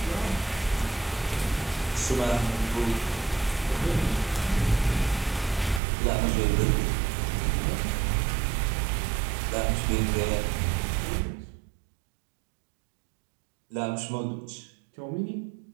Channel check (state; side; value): drops out; left; at 5.8 s